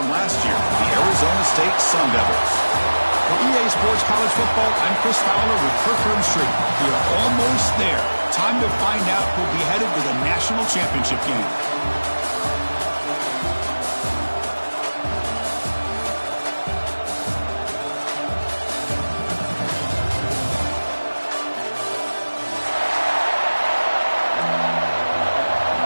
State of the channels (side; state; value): both; inverted; correlation -1.00